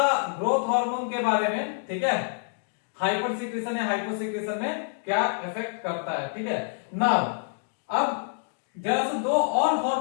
ग्रोथ हार्मोन के बारे में, ठीक है, हाइपरसिक्रेशन या हाइपोसिक्रेशन में क्या इफेक्ट करता है, ठीक है। नाउ अब जरा से दो और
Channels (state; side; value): silent; right; digital silence